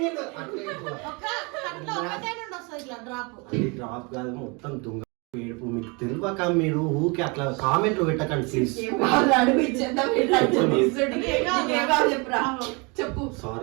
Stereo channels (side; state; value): left; quieter; 29.8 dB